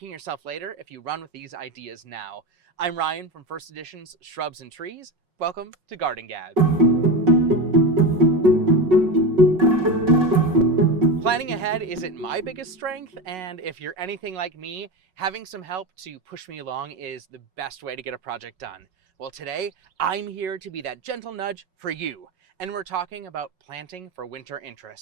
yourself later if you run with these ideas now. I'm Ryan from First Edition's Shrubs and Trees. Welcome to Garden Gab. Planning ahead isn't my biggest strength, and if you're anything like me, having some help to push me along is the best way to get a project done. Well, today, I'm here to be that gentle nudge for you, and we're talking about planting for winter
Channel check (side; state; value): left; late; 5.4 ms